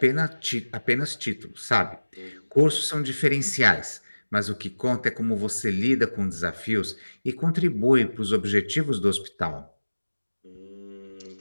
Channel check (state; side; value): inverted; both; correlation -1.00